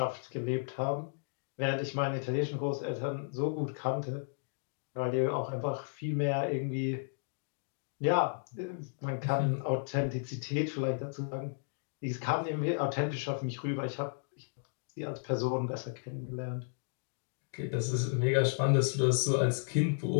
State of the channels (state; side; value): silent; right; digital silence